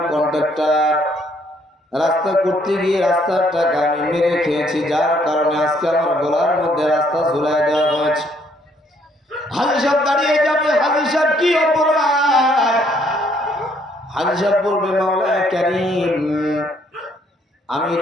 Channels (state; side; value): normal; both; correlation 0.67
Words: কন্ট্রাক্টর, রাস্তা করতে গিয়ে রাস্তার টাকা আমি মেরে খেয়েছি, যার কারণে আজকে আমার গলার মধ্যে রাস্তা ঝুলাই দেওয়া হয়েছে। হাজি সাহেব দাঁড়িয়ে যাবে, হাজি সাহেব কি অপরাধ? হাজি সাহেব বলবে মাওলা কারীম, আমি